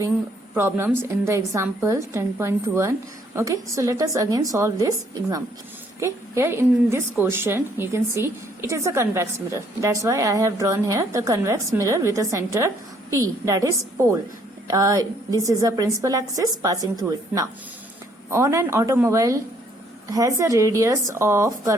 problems in the example 10.1. Okay, so let us again solve this example. Okay, here in this question, you can see it is a convex mirror. That's why I have drawn here the convex mirror with a center P, that is pole. This is a principal axis passing through it. Now, on an automobile has a radius of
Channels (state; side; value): normal; both; correlation 0.66